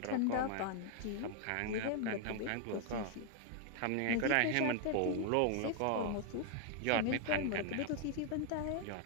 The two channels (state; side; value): different; both; correlation 0.00